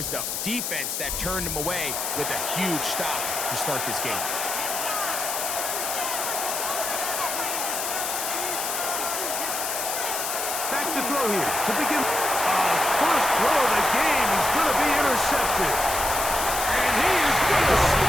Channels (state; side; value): noise; left; hiss, 2 dB below the sound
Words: the defense that turned them away with a huge stop to start this game. Back to throw here to begin. First throw of the game is going to be intercepted. And he is going to